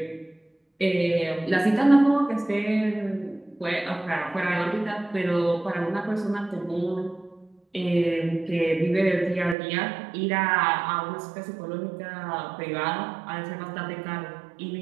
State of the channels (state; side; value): drops out; left; at 9.6 s